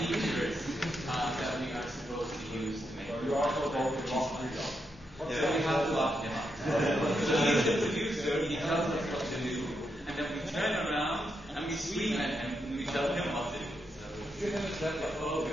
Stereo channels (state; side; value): normal; both; correlation 0.83